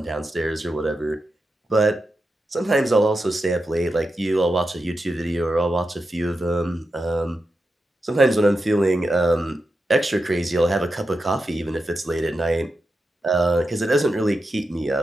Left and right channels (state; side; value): normal; both; correlation 0.89